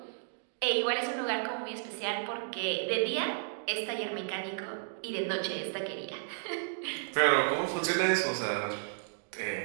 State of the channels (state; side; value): silent; left; digital silence